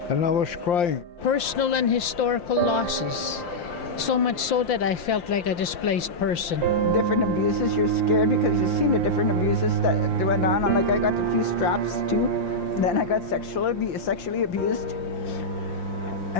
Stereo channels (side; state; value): right; late; 5.8 ms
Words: And I was crying. Personal and historical losses. So much so that I felt like a displaced person. Different abuses, you're scared because you've seen the different abuses that went on. And like I got a few straps too. Then I got sexually abused.